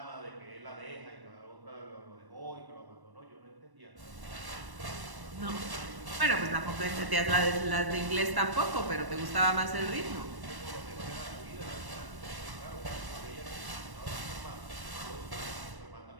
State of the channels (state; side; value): late; left; 1.1 ms